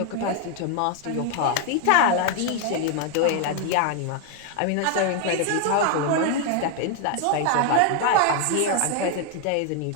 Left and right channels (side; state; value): both; different; correlation 0.01